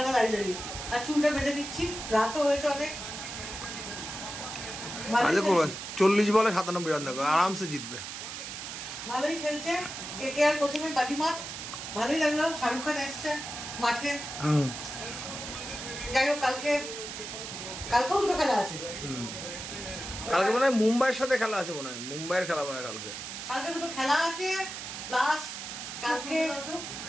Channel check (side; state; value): right; noise; hiss, 8 dB below the sound